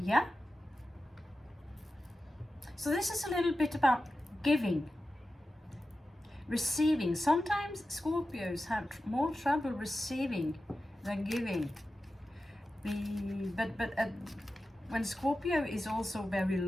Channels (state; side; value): normal; both; correlation 0.93